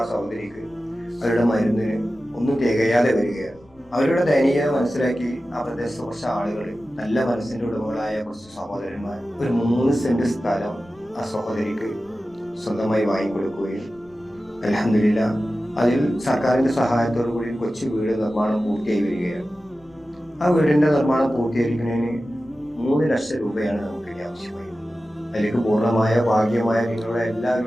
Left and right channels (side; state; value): left; noise; rumble, 29 dB below the sound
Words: ആ സഹോദരിക്ക് അവരുടെ മരുന്നിന് ഒന്നും തികയാതെ വരികയാണ്. അവരുടെ ദയനീയത മനസ്സിലാക്കി ആ പ്രദേശത്തെ കുറച്ച് ആളുകൾ, നല്ല മനസ്സിൻ്റെ ഉടമകളായ കുറച്ച് സഹോദരന്മാർ, ഒരു 3 സെന്റ് സ്ഥലം ആ സഹോദരിക്ക് സ്വന്തമായി വാങ്ങിക്കൊടുക്കുകയും അൽഹംദുലില്ലാഹ് അതിൽ സർക്കാരിൻ്റെ സഹായത്തോടു കൂടി കൊച്ചു വീട് നിർമ്മാണം പൂർത്തിയായി വരികയാണ്. ആ വീടിൻ്റെ നിർമ്മാണം പൂർത്തീകരിക്കുന്നതിന് 3 ലക്ഷം രൂപയാണ് നമുക്ക് ആവശ്യമായി. അതിലേക്ക് പൂർണ്ണമായ ഭാഗ്യമായ നിങ്ങളുടെ